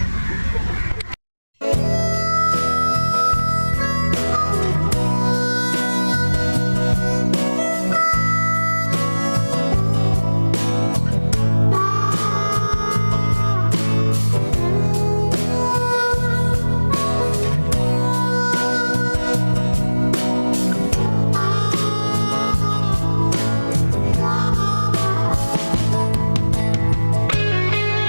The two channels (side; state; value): both; inverted; correlation -1.00